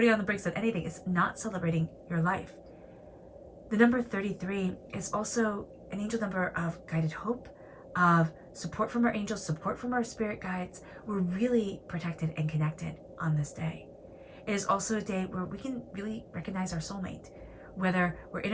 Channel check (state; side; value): identical; both; correlation 1.00